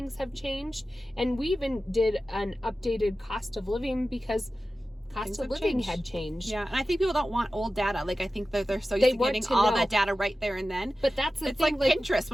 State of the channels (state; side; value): normal; both; correlation 0.94